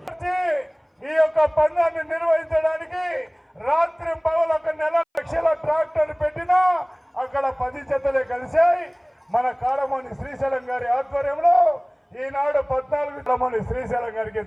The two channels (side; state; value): both; identical; correlation 1.00